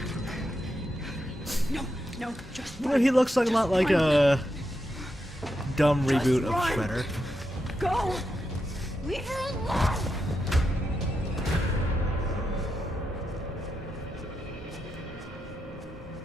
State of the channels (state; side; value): normal; both; correlation 0.85